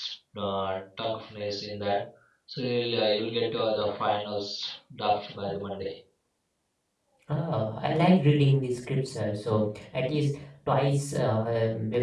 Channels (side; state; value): both; identical; correlation 1.00